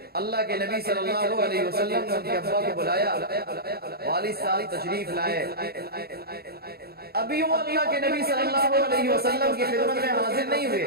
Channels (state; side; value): late; left; 0.46 ms